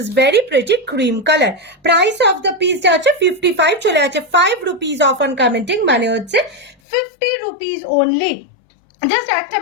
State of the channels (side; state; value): right; drops out; at 6.8 s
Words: very pretty cream color. Price of the piece যাচ্ছে 55, চলে যাচ্ছে 5 rupees off on commenting, মানে হচ্ছে 50 rupees only. জাস্ট একটা